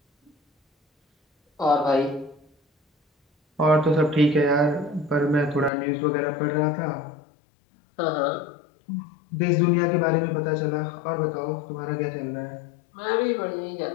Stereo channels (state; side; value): drops out; right; at 5.7 s